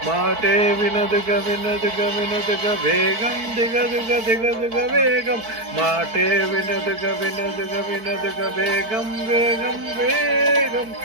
మాటే వినదుగా వినదుగా వినదుగా వేగం దిగదుగా దిగదుగా వేగం మాటే వినదుగా వినదుగా వినదుగా వేగం వేగం వేగం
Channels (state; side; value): late; left; 4.5 ms